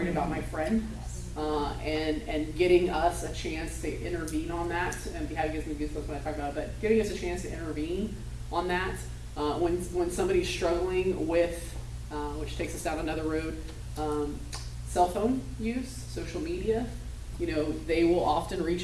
about my friend. And getting us a chance to intervene on that, and having gives me goosebumps when I talk about it, but giving us a chance to intervene on that when somebody's struggling with, which takes us down another road, cell phone use, social media. They will often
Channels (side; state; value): both; identical; correlation 1.00